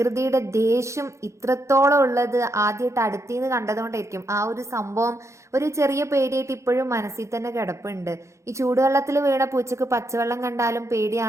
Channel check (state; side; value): late; left; 0.14 ms